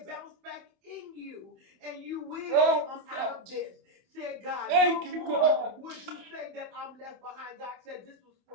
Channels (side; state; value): left; late; 27 ms